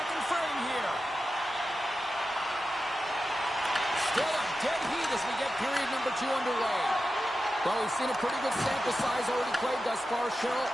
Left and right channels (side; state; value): both; normal; correlation 0.91